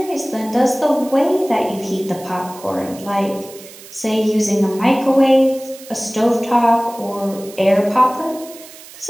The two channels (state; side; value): noise; right; hiss, 18 dB below the sound